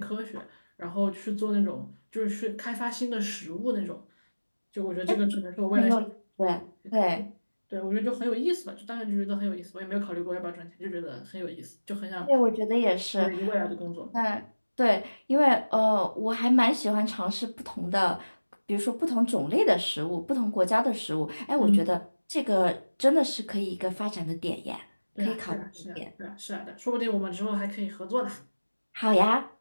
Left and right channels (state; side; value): inverted; both; correlation -1.00